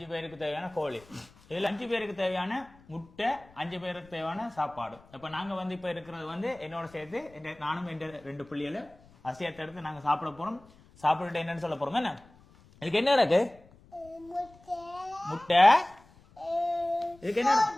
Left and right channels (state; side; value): noise; left; rumble, 26 dB below the sound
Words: பேருக்கு தேவையான கோழி, இதில் 5 பேருக்கு தேவையான முட்டை, 5 பேருக்கு தேவையான சாப்பாடு. இப்போ நாங்கள் வந்து இப்போ இருக்கிறது வந்து என்னோட சேர்த்து நானும் என் 2 பிள்ளைகளும் அரிசியத்தை எடுத்து நாங்கள் சாப்பிட போகிறோம். சாப்பிட்டுட்டு என்னன்னு சொல்ல போகிறோம். என்ன இதுக்கு என்ன இருக்கு? முட்டை. இதுக்கு என்ன?